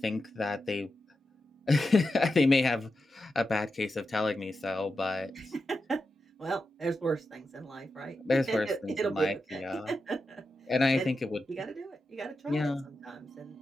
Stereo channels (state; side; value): normal; both; correlation 0.89